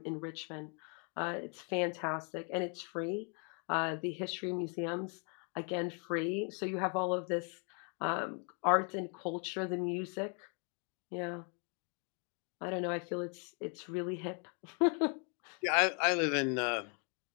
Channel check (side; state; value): right; quieter; 39.3 dB